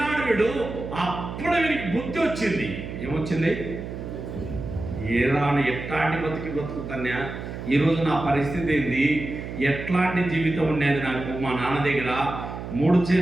వీడు. అప్పుడు వీడికి బుద్ధి వచ్చింది. ఏమొచ్చింది? ఏరాను ఎట్లాంటి బతుకుతాన్యా, ఈరోజు నా పరిస్థితి ఏంది, ఎట్లాంటి జీవితం ఉండేది నాకు. మా నాన్న దగ్గర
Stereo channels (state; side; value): noise; right; hum, 8 dB below the sound